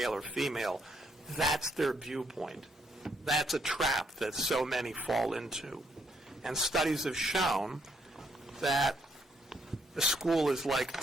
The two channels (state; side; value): normal; both; correlation 0.73